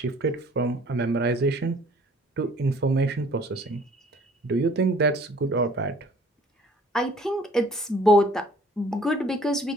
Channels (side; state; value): both; normal; correlation 0.54